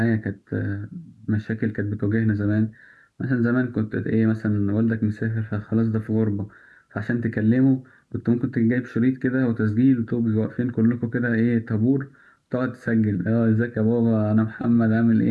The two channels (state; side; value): identical; both; correlation 1.00